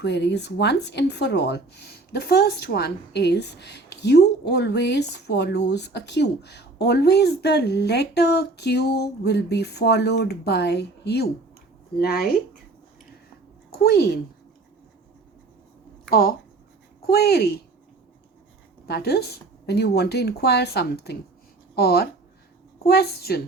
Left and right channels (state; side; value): quieter; left; 3.3 dB